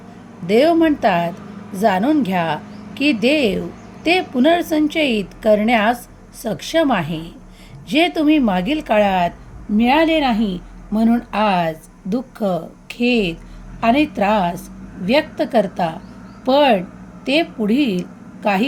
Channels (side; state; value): both; identical; correlation 1.00